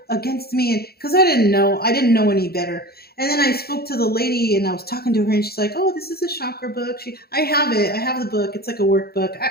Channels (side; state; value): right; late; 0.45 ms